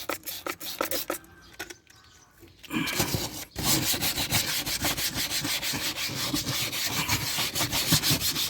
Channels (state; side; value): identical; both; correlation 1.00